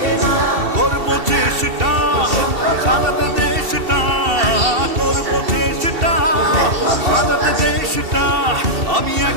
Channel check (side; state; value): left; late; 2.7 ms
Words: করবো চেষ্টা সাজাতে দেশটা, করবো চেষ্টা সাজাতে দেশটা। আমি